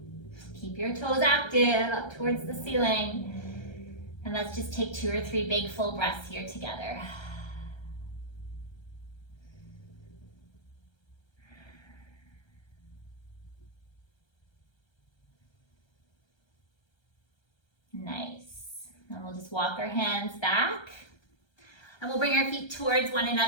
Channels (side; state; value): right; late; 1.3 ms